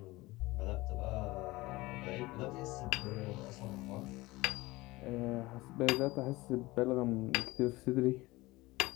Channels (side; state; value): right; quieter; 20.5 dB